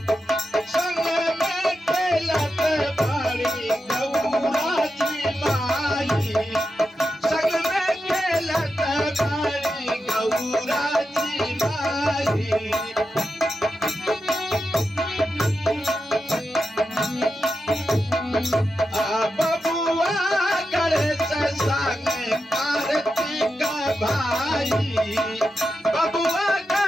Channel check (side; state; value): both; normal; correlation 0.89